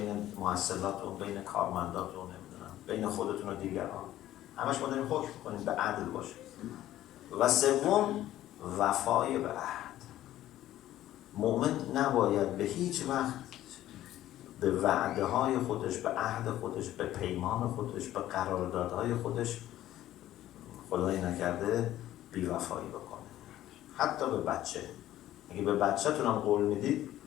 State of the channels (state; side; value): quieter; right; 13.6 dB